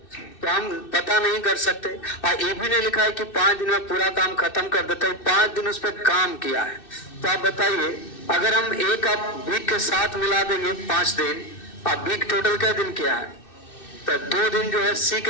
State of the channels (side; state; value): right; late; 2.6 ms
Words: तो हम पता नहीं कर सकते। और ये भी नहीं लिखा है कि 5 दिन में पूरा काम खत्म कर देता है, 5 दिन उस पर काम किया है। तो आप बताइए, अगर हम ए का बी के साथ मिला देंगे 5 दिन, और बी टोटल क्या दिन किया है, तो 2 दिन जो है सी